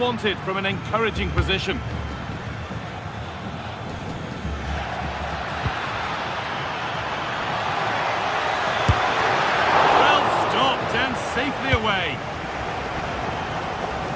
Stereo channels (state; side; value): identical; both; correlation 1.00